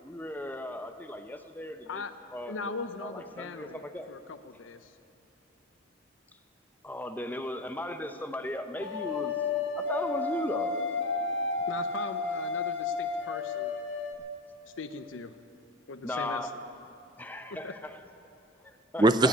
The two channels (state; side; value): normal; both; correlation 0.31